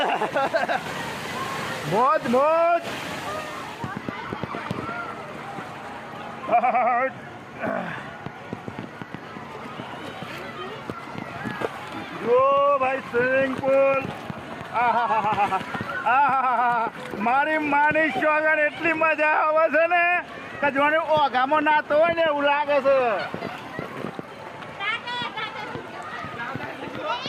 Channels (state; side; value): identical; both; correlation 1.00